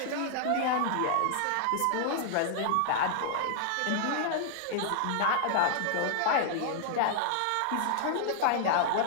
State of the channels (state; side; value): different; both; correlation -0.01